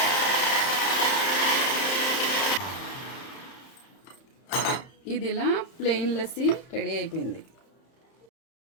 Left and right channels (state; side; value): late; right; 31 ms